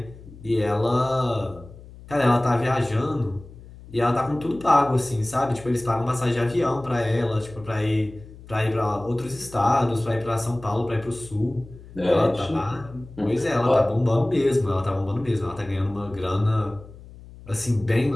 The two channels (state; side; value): noise; left; hum, 19 dB below the sound